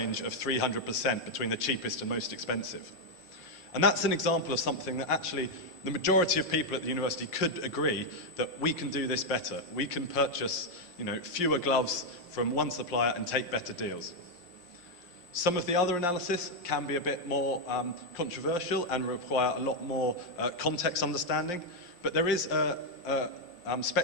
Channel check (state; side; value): late; right; 5.6 ms